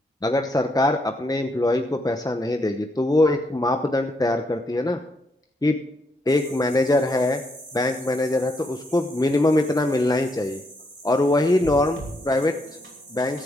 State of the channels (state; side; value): normal; both; correlation 0.76